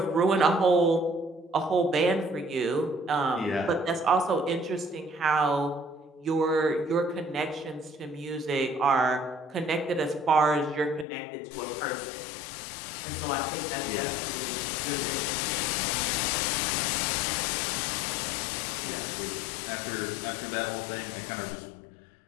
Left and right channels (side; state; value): right; drops out; at 11.1 s